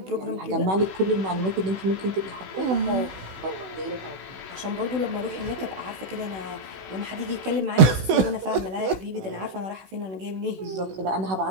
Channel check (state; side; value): late; left; 16 ms